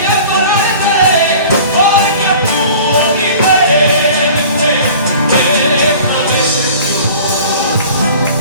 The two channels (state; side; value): inverted; both; correlation -0.44